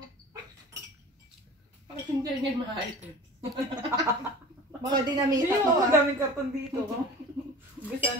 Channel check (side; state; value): both; normal; correlation 0.39